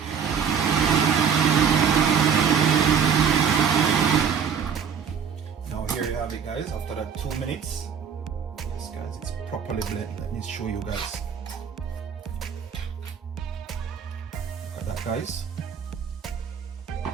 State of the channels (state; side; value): quieter; left; 7.2 dB